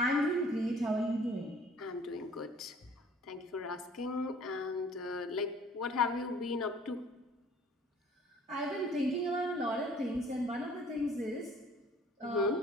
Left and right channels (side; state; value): both; normal; correlation 0.53